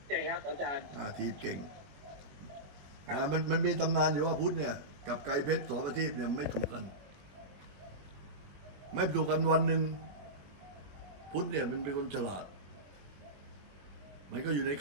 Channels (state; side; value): late; left; 20 ms